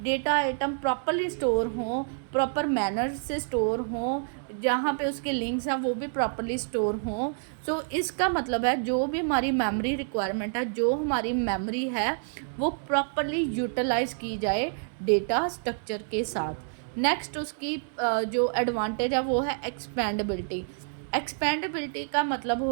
डेटा आइटम प्रॉपरली स्टोर हों, प्रॉपर मैनर से स्टोर हों, जहाँ पे उसके लिंक्स हैं वो भी प्रॉपरली स्टोर हों। सो इसका मतलब है जो भी हमारी मेमोरी रिक्वायरमेंट है, जो हमारी मेमोरी है, वो प्रॉपरली यूटिलाइज की जाए डेटा स्ट्रक्चर के साथ। नेक्स्ट उसकी जो एडवांटेज है वो है एक्सपेंडेबिलिटी। एक्सपेंडेबिलिटी का मतलब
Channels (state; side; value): silent; left; digital silence